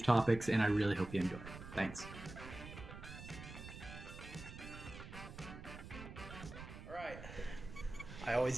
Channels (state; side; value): noise; right; rumble, 12 dB below the sound